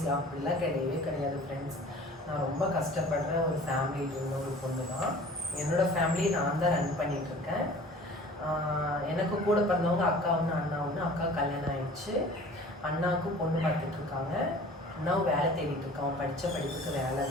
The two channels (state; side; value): normal; both; correlation 0.45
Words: அப்படிலாம் கிடையவே கிடையாது ஃப்ரெண்ட்ஸ். நான் ரொம்ப கஷ்டப்படுற ஒரு ஃபேமிலியில் இருந்த ஒரு பொண்ணு தான். என்னோடய ஃபேமிலியை நான் தான் ரன் பண்ணிகிட்ருக்கேன். எனக்கு கூட பிறந்தவங்க அக்கா ஒன்று, அண்ணா ஒன்று. அக்கா கல்யாணம் ஆயிடுச்சு. அண்ணாவுக்கும் பொண்ணு பார்த்துட்ருக்காங்க. அண்ணாவும் வேலை தேடிட்டு இருக்கான். படித்த படிப்புக்கு வேலை